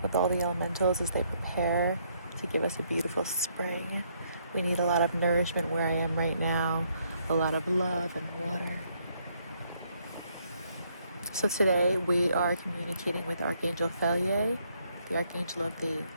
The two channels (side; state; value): both; inverted; correlation -0.71